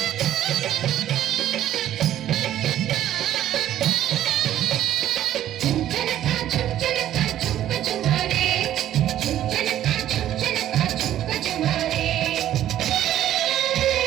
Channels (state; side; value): quieter; left; 12.0 dB